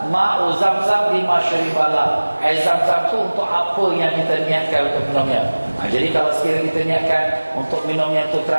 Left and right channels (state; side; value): inverted; both; correlation -1.00